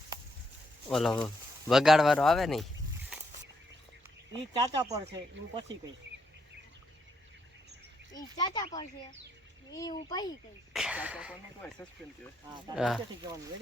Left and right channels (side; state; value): both; normal; correlation 0.77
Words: ઓલો વગાડવાનો આવે ને. ઈ ચાચા પર છે, હું પછી કહીશ. ઈ ચાચા પર છે, ઈ હું પછી કહીશ. ચાચા પર નો કહેવાય, સસ્પેન્સ કહેવાય. હા તારે નીચેથી કહેવાનું.